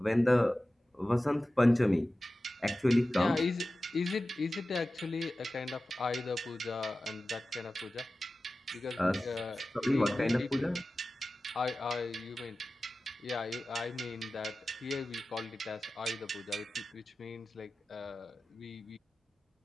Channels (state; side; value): normal; both; correlation 0.95